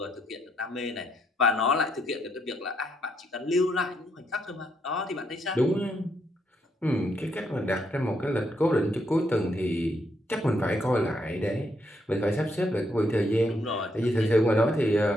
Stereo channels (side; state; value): both; normal; correlation 0.76